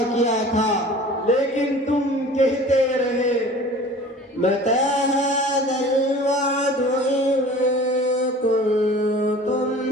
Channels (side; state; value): both; normal; correlation 0.43